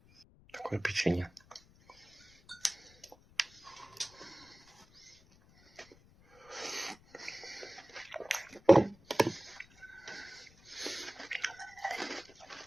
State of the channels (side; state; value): left; noise; rumble, 26 dB below the sound